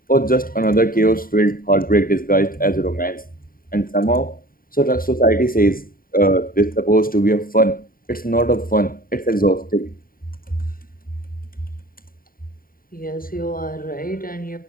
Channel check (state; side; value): late; right; 0.41 ms